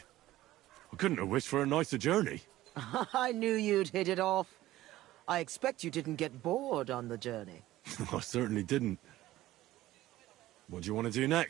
I couldn't have wished for a nicer journey. I knew you'd hit it off. I expect you didn't get bored on the journey. I certainly didn't. What do you want to do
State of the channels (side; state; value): left; quieter; 15.7 dB